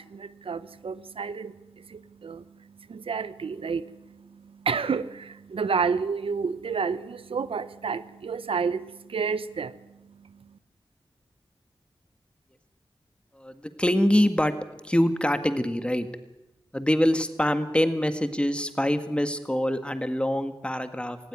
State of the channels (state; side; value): normal; both; correlation 0.80